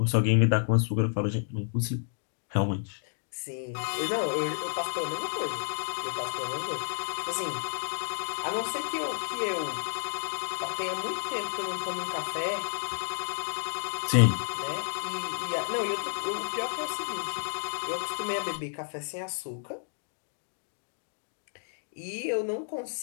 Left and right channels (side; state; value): right; silent; digital silence